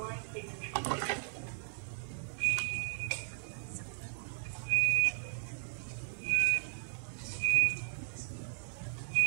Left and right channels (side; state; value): left; silent; digital silence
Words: please introduce yourself.